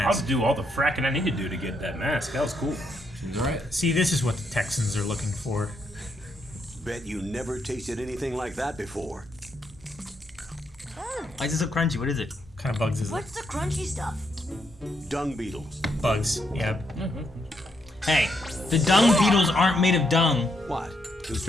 do all the fracking I need to do to get that mask. That was cool. Seems alright. See, this is what the Texans are looking for. Bet you never tasted anything like that before. Why is it so crunchy? What is it? What kind of bugs is it? What's the crunchy stuff? Dung beetles. Bugs. Yep. Hey, the dung beetles aren't made of dung. What? Too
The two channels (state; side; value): normal; both; correlation 0.77